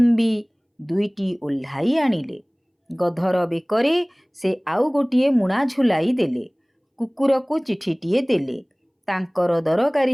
ଦୁଇଟି ଓହ୍ଲାଇ ଆଣିଲେ। ଗଧର ବେକରେ ସେ ଆଉ ଗୋଟିଏ ମୁଣା ଝୁଲାଇ ଦେଲେ। କୁକୁରକୁ ଚିଠିଟିଏ ଦେଲେ। ତାଙ୍କର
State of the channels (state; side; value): identical; both; correlation 1.00